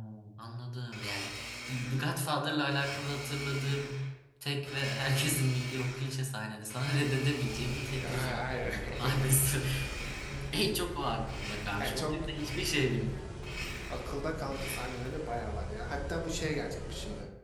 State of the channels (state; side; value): identical; both; correlation 1.00